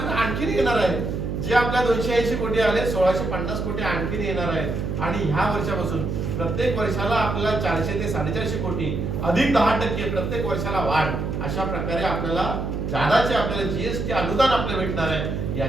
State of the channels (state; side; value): noise; right; hum, 2 dB below the sound